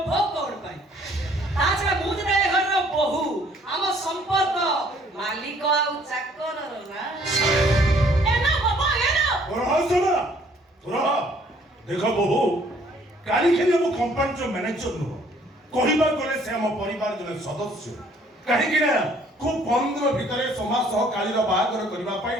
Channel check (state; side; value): normal; both; correlation 0.61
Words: କଣ ପାଇଁ? ତା ଛଡା ମୁଁ ଯେତେବେଳେ ଘରର ବୋହୂ ଆମ ସମ୍ପର୍କ ମାଲିକ ଆଉ ଚାକରର ନା। ଏ ନା ବାବା ଏ ନା। रहा सुना रहा देखो बहु काली खेली हम कंपनी जो मैनेजर नु कहिबा गले से हम परिवार जने सदस्य काहे कि ना खूब कम दिन भितरे समाज सह कालीर बाहागर करबा पई